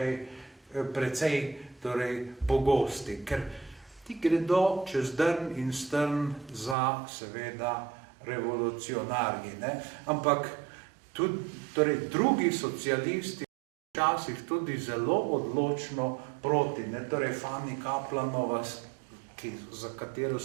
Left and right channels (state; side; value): drops out; left; at 6.8 s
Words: precej torej pogosti, ker ti gredo čez drn in strn za seveda revolucionarji, ne? Ampak tudi torej drugi socialisti včasih tudi zelo odločno proti, ne? Torej Fanny Kaplanova, za katero